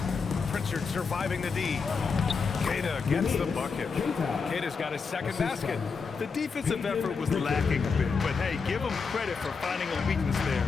Pritchard surviving the D. Queta gets the bucket. Queta's got his second basket. The defensive effort was lacking a bit, but hey, give them credit for finding a weakness there.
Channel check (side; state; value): right; quieter; 5.2 dB